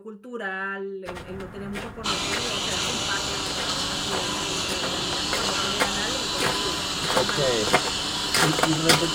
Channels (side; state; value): both; identical; correlation 1.00